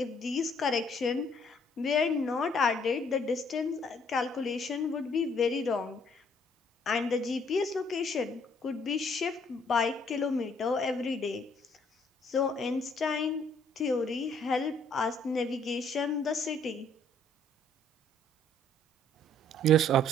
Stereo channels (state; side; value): normal; both; correlation 0.64